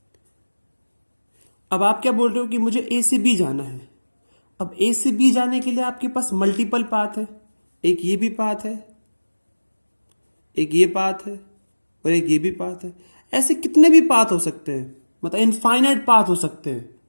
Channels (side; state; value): both; inverted; correlation -1.00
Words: अब आप क्या बोल रहे हो कि मुझे ए से बी जाना है. अब ए से बी जाने के लिए आपके पास मल्टीपल पाथ है. एक ये भी पाथ है, एक ये पाथ है और एक ये भी पाथ है. ऐसे कितने भी पाथ हो सकते हैं, मतलब इनफाइनाइट पाथ हो सकते हैं.